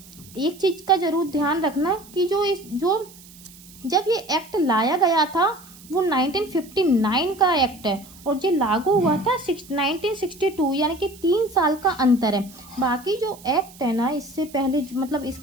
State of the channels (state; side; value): noise; right; hiss, 21 dB below the sound